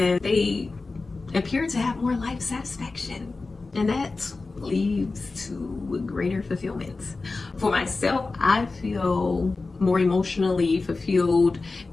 they appear to have more life satisfaction, and that leads to greater fulfillment. For myself, I feel more emotionally fulfilled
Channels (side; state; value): right; quieter; 3.7 dB